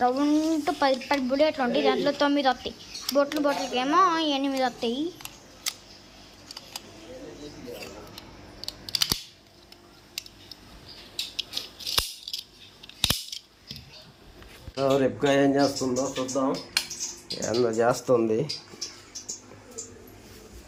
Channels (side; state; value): both; identical; correlation 1.00